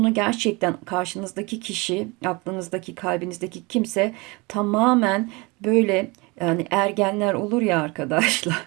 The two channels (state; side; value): quieter; left; 26.1 dB